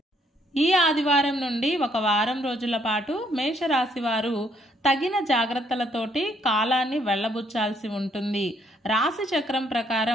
ఈ ఆదివారం నుండి ఒక వారం రోజుల పాటు మేషరాశి వారు తగిన జాగ్రత్తలతోటి కాలాన్ని వెళ్ళబుచ్చాల్సి ఉంటుంది. రాశి చక్రం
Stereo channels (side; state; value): both; normal; correlation 0.69